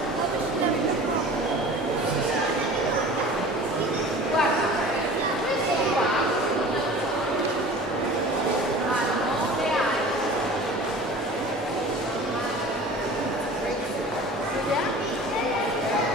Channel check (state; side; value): normal; both; correlation 0.41